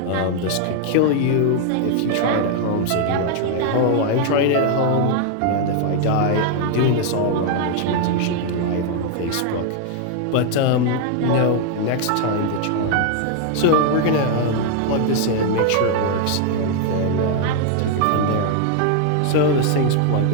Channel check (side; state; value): both; different; correlation 0.00